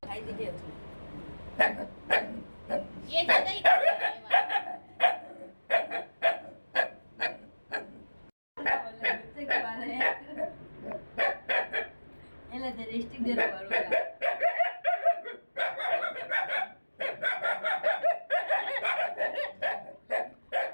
खाई दीजिए उसको। ये ज़्यादा ही कर रहा है ये वाला। बच्चे के बारे में ये ले तेरे स्टिक दे रहा है।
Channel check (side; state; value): both; inverted; correlation -1.00